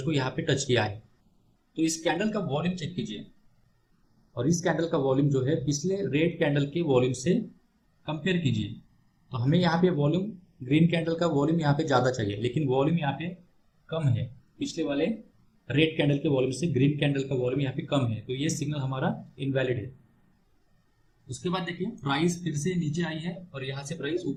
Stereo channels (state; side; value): identical; both; correlation 1.00